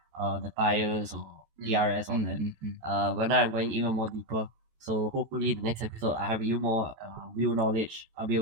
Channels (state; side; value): late; left; 14 ms